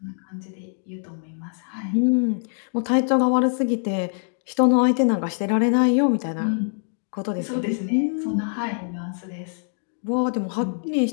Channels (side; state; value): right; silent; digital silence